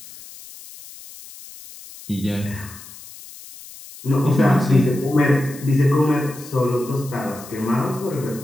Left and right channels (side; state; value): left; noise; hiss, 17 dB below the sound